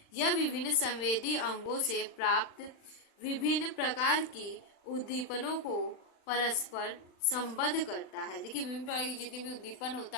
यह विभिन्न संवेदी अंगों से प्राप्त विभिन्न प्रकार की उद्दीपनों को परस्पर संबद्ध करता है। देखिए विभिन्न प्रकार की जितनी भी उद्दीपन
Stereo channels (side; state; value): right; late; 39 ms